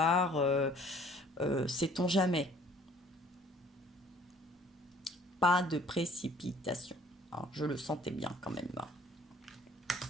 sait-on jamais. Pas de précipitation. Alors, je le sentais bien quand même.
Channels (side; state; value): both; normal; correlation 0.55